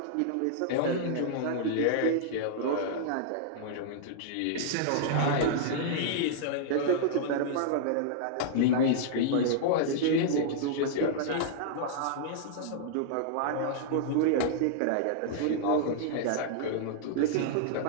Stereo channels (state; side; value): different; both; correlation -0.01